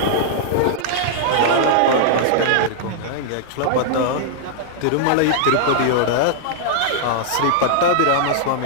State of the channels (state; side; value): different; both; correlation -0.01